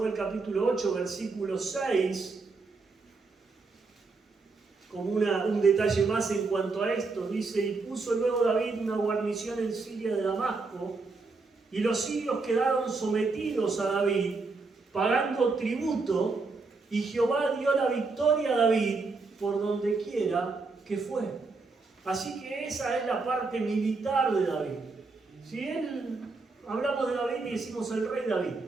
capítulo 8, versículo 6, como un detalle más en cuanto a esto. Dice, y puso luego David una guarnición en Siria de Damasco, y los sirios quedaron sometidos a David, pagando tributo, y Jehová dio la victoria a David por donde quiera que fue. Así que esa es la parte militar de David. Si hablamos de David y decimos el rey David,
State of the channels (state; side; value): quieter; left; 4.0 dB